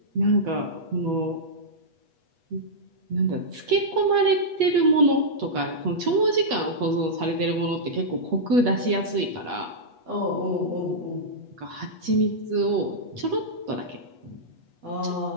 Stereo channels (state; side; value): late; left; 8.2 ms